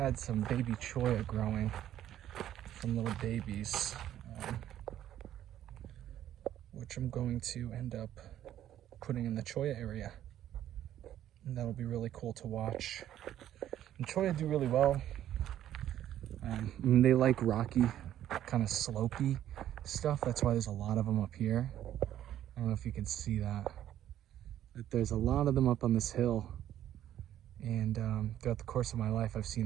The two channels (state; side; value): quieter; left; 11.7 dB